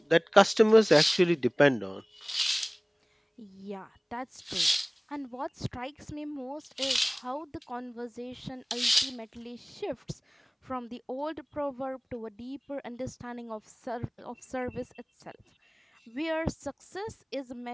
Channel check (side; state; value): both; identical; correlation 1.00